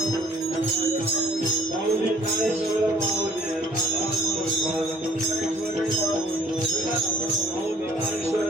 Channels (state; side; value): normal; both; correlation 0.57